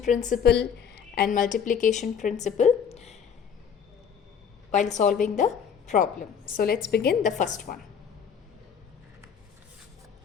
principle and multiplication principle while solving the problem. So let's begin the first one.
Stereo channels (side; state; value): right; quieter; 7.4 dB